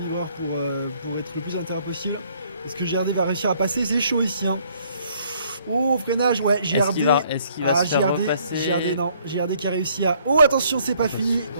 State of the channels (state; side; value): inverted; both; correlation -0.64